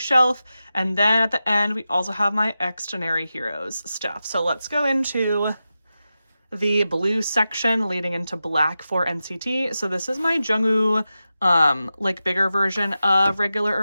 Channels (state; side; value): inverted; both; correlation -0.92